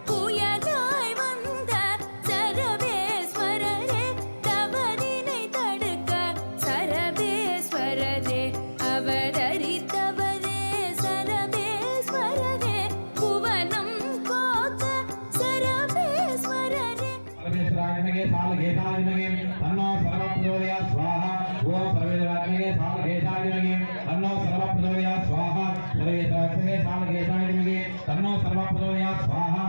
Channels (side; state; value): both; inverted; correlation -1.00